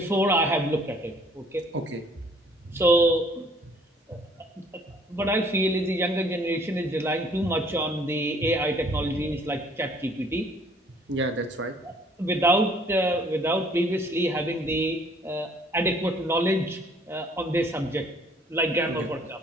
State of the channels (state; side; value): normal; both; correlation 0.59